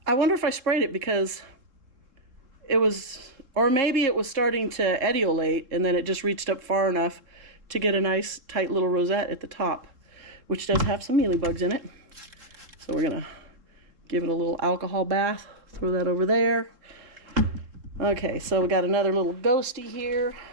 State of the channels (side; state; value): left; late; 3.7 ms